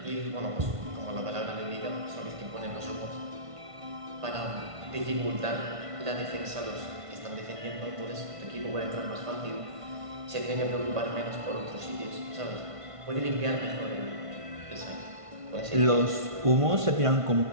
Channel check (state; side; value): late; left; 1.5 ms